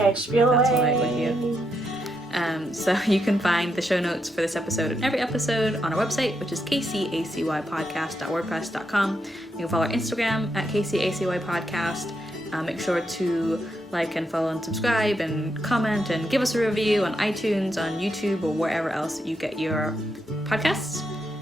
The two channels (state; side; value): normal; both; correlation 0.81